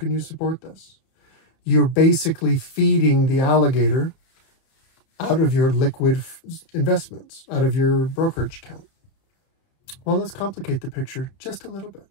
you support this? You're basically feeding the alligator out of your liquid investments, out of your brokerage account. Well, let's complicate the picture just a little bit.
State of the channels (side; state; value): right; late; 30 ms